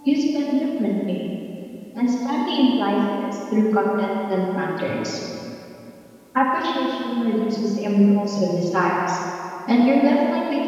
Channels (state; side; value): identical; both; correlation 1.00